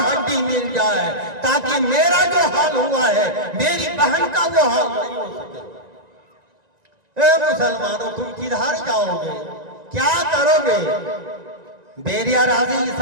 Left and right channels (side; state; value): left; late; 1.9 ms